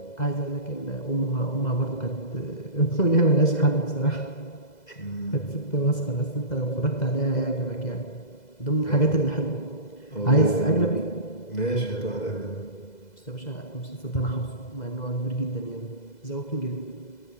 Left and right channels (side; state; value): right; late; 2.0 ms